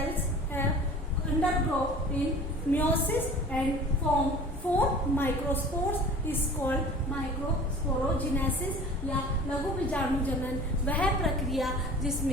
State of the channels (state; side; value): normal; both; correlation 0.43